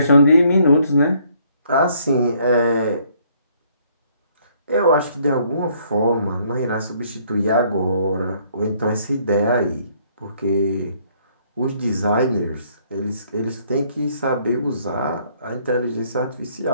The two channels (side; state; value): both; inverted; correlation -0.65